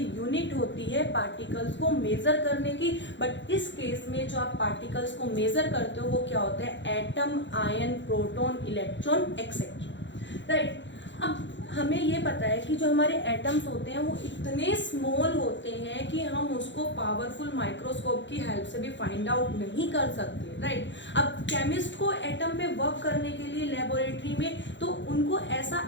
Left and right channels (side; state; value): right; late; 0.53 ms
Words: यूनिट होती है पार्टिकल्स को मेजर करने की। बट इस केस में जो आप पार्टिकल्स को मेजर करते हो वो क्या होता है, atom, ion, proton, electron etcetera, right. अब हमें ये पता है कि जो हमारे एटम्स होते हैं वो इतने स्मॉल होते हैं कि हम उसको पावरफुल माइक्रोस्कोप की हेल्प से भी फाइंड आउट नहीं कर सकते, राइट। अब केमिस्ट को एटम पे वर्क करने के लिए लेबोरेटरी में तो उनको